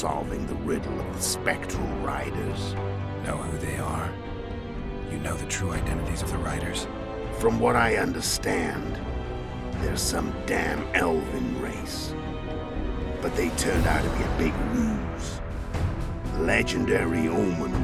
the riddle of the spectral riders. Know who they are? You know the true identities of the riders? From what I understand, they're some damn elven race. But they turned out to be a big ruse. The legendary Omen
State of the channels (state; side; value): identical; both; correlation 1.00